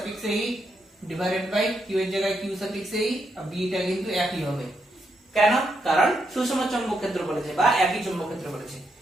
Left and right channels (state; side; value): normal; both; correlation 0.81